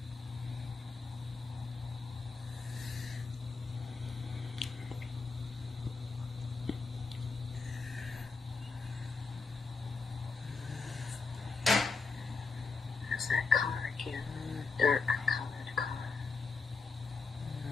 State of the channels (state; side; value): quieter; right; 4.4 dB